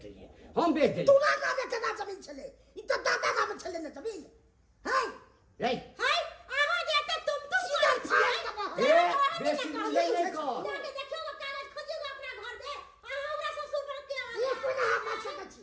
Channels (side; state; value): both; identical; correlation 1.00